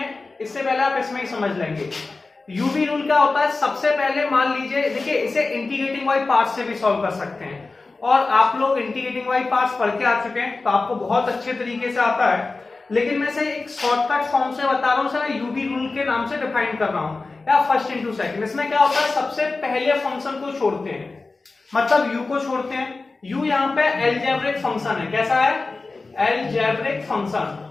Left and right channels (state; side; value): quieter; right; 3.7 dB